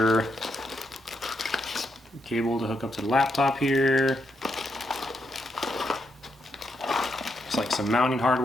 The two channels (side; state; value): both; normal; correlation 0.81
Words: cable to hook up to the laptop here. It's like some mounting